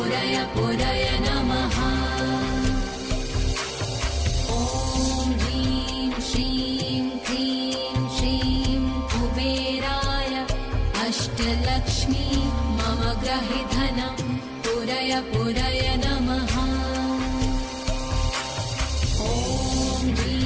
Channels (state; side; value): identical; both; correlation 1.00